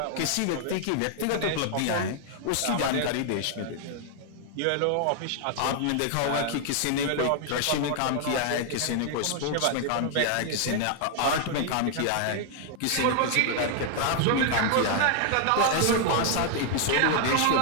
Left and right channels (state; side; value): different; both; correlation 0.00